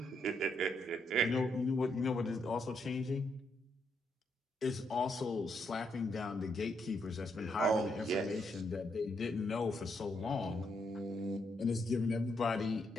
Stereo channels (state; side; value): normal; both; correlation 0.77